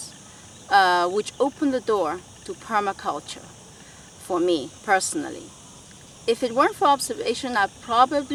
which open the door to permaculture for me personally. If it weren't for observation, I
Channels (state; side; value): identical; both; correlation 1.00